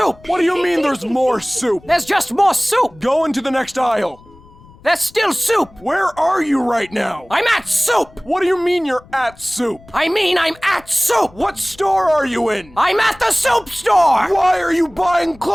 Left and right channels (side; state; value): left; noise; rumble, 25 dB below the sound